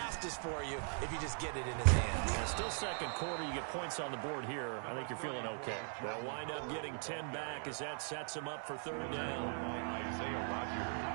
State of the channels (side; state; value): left; silent; 51 dB below the other